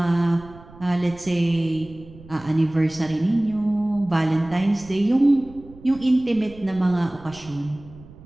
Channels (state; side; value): noise; right; rumble, 20 dB below the sound